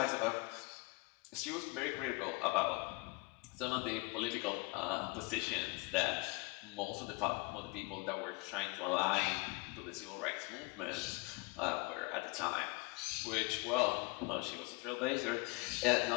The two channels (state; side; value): quieter; right; 26.0 dB